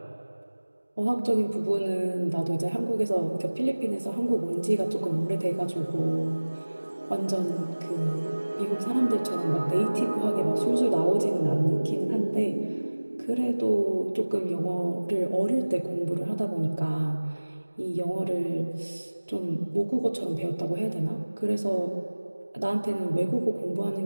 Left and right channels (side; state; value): both; inverted; correlation -1.00